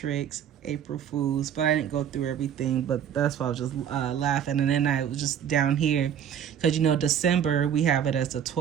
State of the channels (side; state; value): left; quieter; 9.0 dB